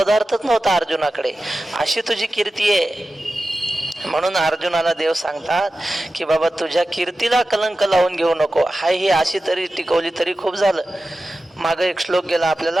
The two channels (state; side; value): normal; both; correlation 0.94